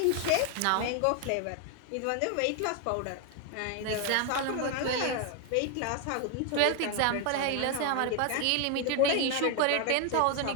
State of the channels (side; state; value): both; different; correlation 0.01